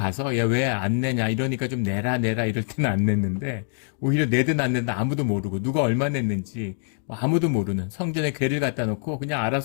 야 왜 안 내냐 이러니까 좀 내라 이럴 때는 안 냈는데 오히려 내든 안 내든 아무도 모르고 누가 얼마 냈는지 아무도 모르는 성전에 괴를 갖다 놓고 그냥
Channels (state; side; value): silent; right; digital silence